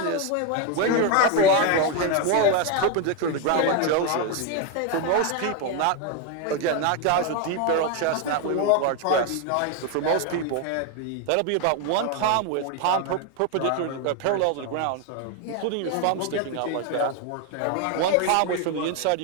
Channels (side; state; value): both; different; correlation 0.02